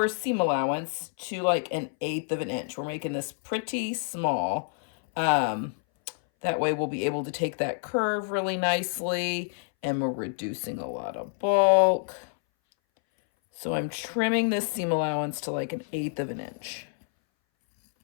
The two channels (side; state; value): right; silent; 59 dB below the other